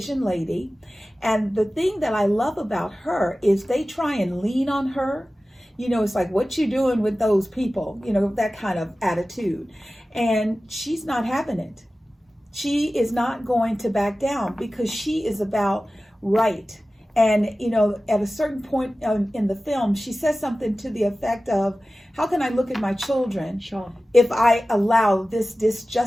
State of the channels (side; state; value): both; normal; correlation 0.96